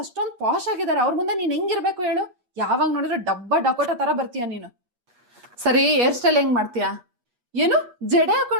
ಅಷ್ಟೊಂದು ಪಾಶ್ ಆಗಿದ್ದಾರೆ, ಅವ್ರ ಮುಂದೆ ನೀನ್ ಹೆಂಗಿರ್ಬೇಕು ಹೇಳು? ಯಾವಾಗ ನೋಡಿದ್ರೆ ಡಕೋಟ ತರ ಬರ್ತೀಯ ನೀನು. ಸರಿ, ಹೇರ್ ಸ್ಟೈಲ್ ಹೆಂಗ್ ಮಾಡ್ತೀಯಾ? ಏನು ಜಡೆ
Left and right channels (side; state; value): left; late; 8.3 ms